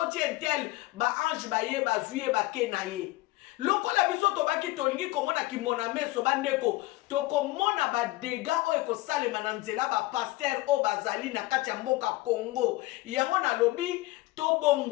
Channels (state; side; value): quieter; right; 19.1 dB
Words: entel ba ange baye bazuye bakena ye. Lokola biso tobaki tolingi komona kimona meso bandeko tokomona ba dega oyo kosalema na nzela ba pasteur o bazali na kati ya mboka Congo. Yango na lobi